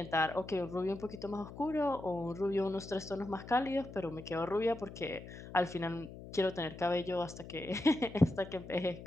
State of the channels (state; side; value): noise; left; hum, 13 dB below the sound